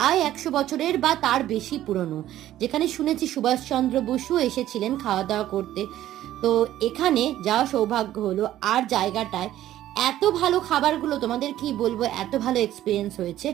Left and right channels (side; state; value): left; quieter; 13.2 dB